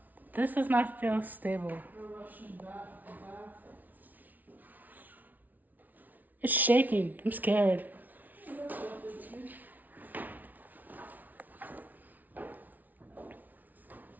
This does not feel stable. It's shaking. I'm scared.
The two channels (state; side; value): late; left; 0.079 ms